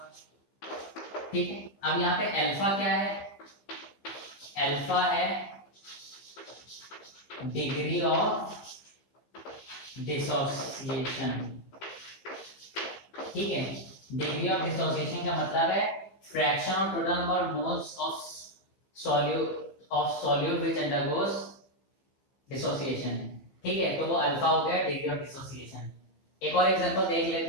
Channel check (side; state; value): right; late; 15 ms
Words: ठीक है। अब यहाँ पे अल्फा क्या है? अल्फा है डिग्री ऑफ डिसोसिएशन, ठीक है। डिग्री ऑफ डिसोसिएशन का मतलब है fraction of total number of moles of solute which undergoes dissociation, ठीक है। तो वो अल्फा हो गया डिग्री ऑफ डिसोसिएशन। एक और एग्जांपल देख